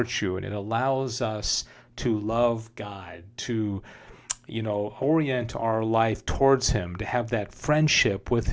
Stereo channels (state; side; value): identical; both; correlation 1.00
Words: and it allows us to love God, to orient our life towards Him, to have that friendship with